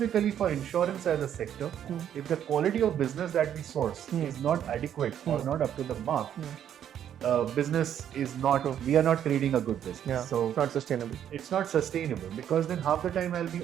for insurance as a sector, if the quality of business that we source is not adequate or not up to the mark, business is not, we are not creating a good business. Yeah. So It's not sustainable. it's not sustainable because then half the time I'll be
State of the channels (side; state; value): left; quieter; 9.8 dB